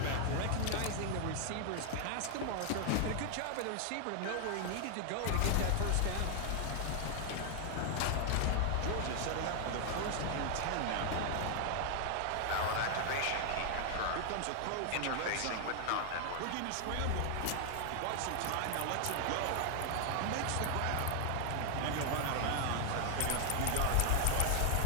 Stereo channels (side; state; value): both; different; correlation 0.00